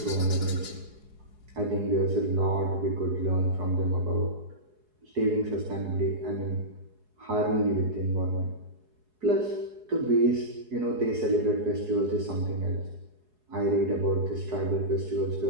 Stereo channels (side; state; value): left; late; 4.7 ms